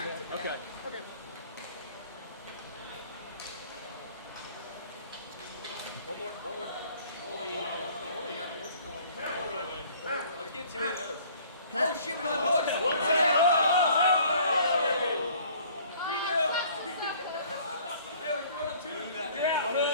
that. Okay. One more. Let's get 2 of those. Oh shit, we don't have hooks. Hey, we're throwing up 2.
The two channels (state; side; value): inverted; both; correlation -0.54